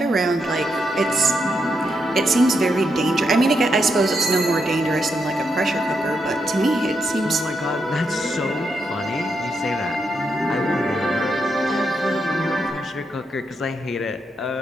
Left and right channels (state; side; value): normal; both; correlation 0.82